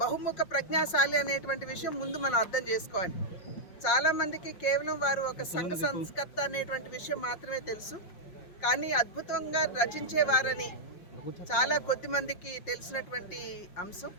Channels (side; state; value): right; late; 5.6 ms